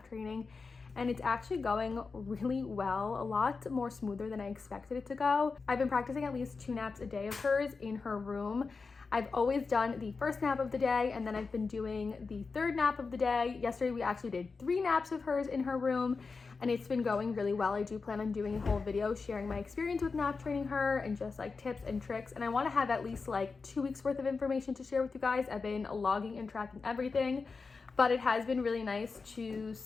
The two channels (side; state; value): right; quieter; 4.5 dB